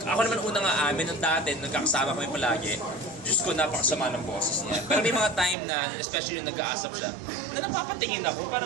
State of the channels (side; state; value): left; drops out; at 5.6 s